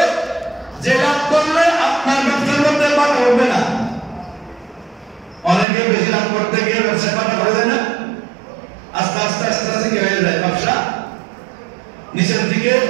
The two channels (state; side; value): drops out; left; at 5.7 s